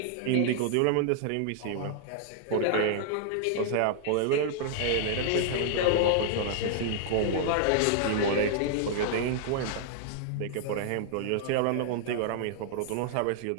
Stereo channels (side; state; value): both; different; correlation -0.01